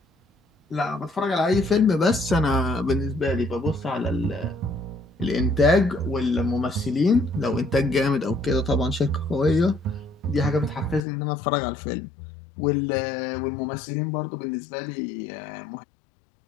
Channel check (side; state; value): right; drops out; at 11.1 s